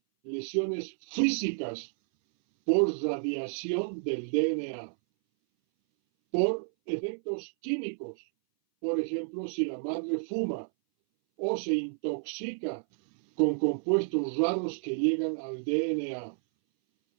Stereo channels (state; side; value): silent; left; 57 dB below the other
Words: lesiones físicas por radiación del DNA, por efectos químicos. Por ejemplo, si la madre fuma o se intoxica con compuestos raros que llegan al DNA.